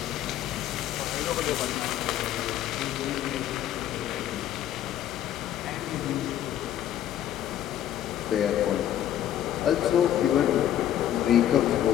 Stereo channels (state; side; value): quieter; right; 11.4 dB